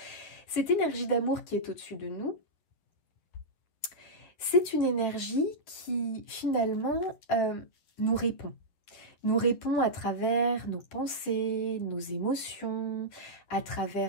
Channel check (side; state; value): right; late; 11 ms